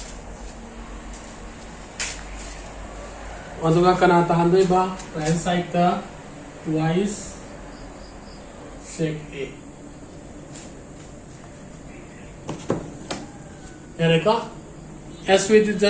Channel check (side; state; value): both; identical; correlation 1.00